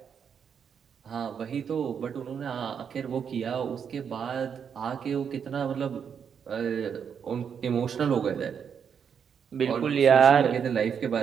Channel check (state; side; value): quieter; left; 7.3 dB